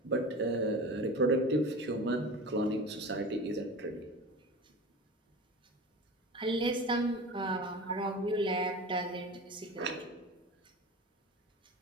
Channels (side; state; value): both; normal; correlation 0.32